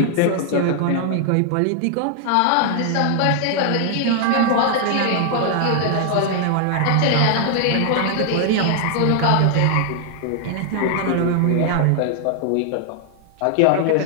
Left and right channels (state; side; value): different; both; correlation 0.00